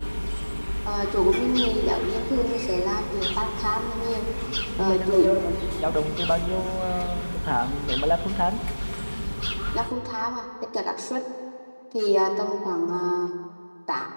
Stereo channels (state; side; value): inverted; both; correlation -1.00